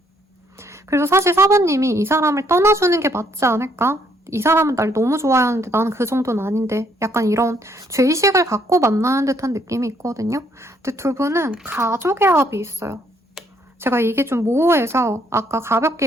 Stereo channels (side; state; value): both; normal; correlation 0.69